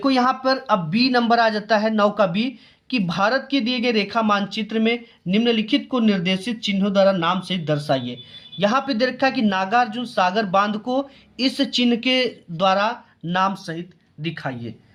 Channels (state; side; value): identical; both; correlation 1.00